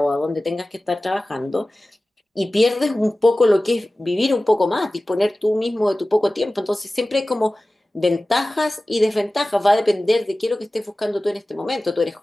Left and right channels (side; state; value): both; normal; correlation 0.97